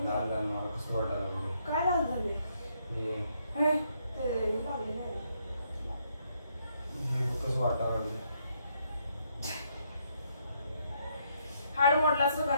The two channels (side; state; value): both; inverted; correlation -0.74